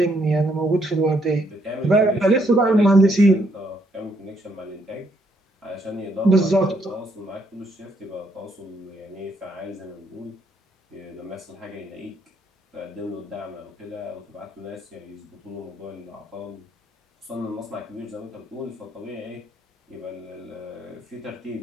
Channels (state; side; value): normal; both; correlation 0.72